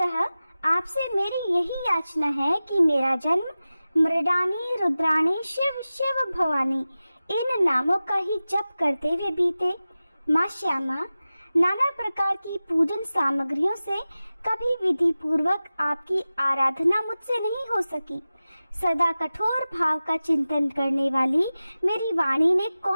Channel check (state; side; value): inverted; both; correlation -0.96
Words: आपसे मेरी यही याचना है कि मेरा जन्म मृडानी रुद्राणी शिव शिव भवानी इन नामों का ही जप करते हुए बीते। माँ श्यामा, नाना प्रकार की पूजन सामग्रियों से कभी विधि पूर्वक आपकी आराधना मुझसे नहीं हो सकी। सदा कठोर भाव का चिंतन करने वाली मेरी वाणी ने